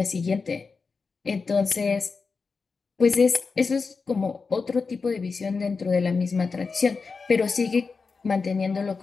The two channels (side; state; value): right; quieter; 4.7 dB